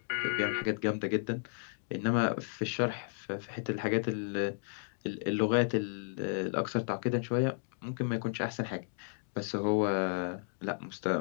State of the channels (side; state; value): right; silent; digital silence